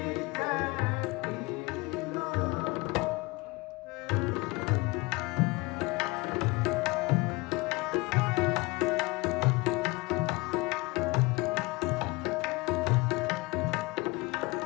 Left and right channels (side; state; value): right; quieter; 23.8 dB